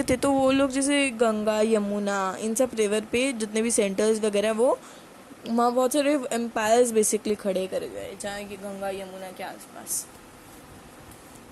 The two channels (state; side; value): identical; both; correlation 1.00